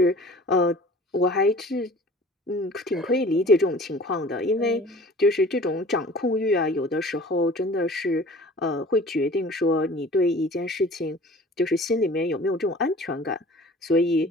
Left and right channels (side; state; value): both; normal; correlation 0.46